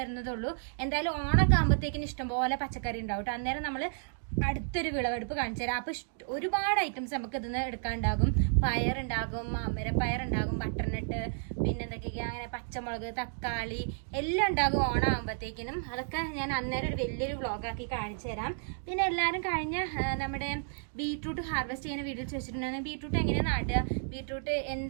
എന്തായാലും ഓണൊക്കെ ആകുമ്പോഴത്തേക്കിന് ഇഷ്ടംപോലെ പച്ചക്കറി ഉണ്ടാവും കേട്ടോ. അന്നേരം നമ്മൾ അടുത്തൊരു വിളവെടുപ്പ് കാണിച്ചു തരാം. അപ്പോൾ ഒരുപാട് ഐറ്റംസ് നമുക്ക് ഇതിന്ന് എടുക്കാനുണ്ടാകും. പയറുണ്ടാകും, അമരപ്പയറുണ്ടാകും, ബട്ടർനട്ട്, പിന്നെ എന്തൊക്കെയാ അങ്ങനെ പച്ചമുളക്, തക്കാളി എല്ലാം ഉണ്ടാകും ഓണമാകുമ്പോഴത്തേക്കിനും. അതൊക്കെ ഞാൻ അന്നേരം ഒരു വലിയൊരു വ്ളോഗാക്കി കാണിച്ചു തരാം. പിന്നെ എല്ലാവരും കഴിഞ്ഞ നമ്മുടെ ബീട്രൂട്ട് ഹാർവെസ്റ്റ് ചെയ്യുന്ന വീഡിയോ ചോദിച്ചിട്ടുണ്ടായിരുന്നു. ബീട്രൂട്ട് എങ്ങനെയാണ് നടുക, ബീട്രൂട്ട്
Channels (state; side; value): silent; left; digital silence